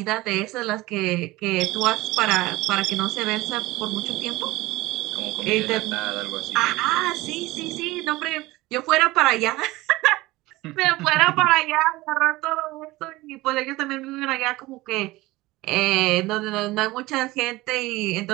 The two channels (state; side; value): quieter; left; 19.6 dB